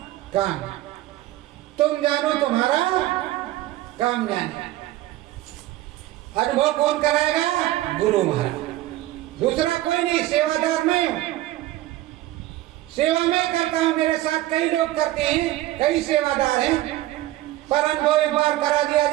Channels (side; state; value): left; quieter; 15.8 dB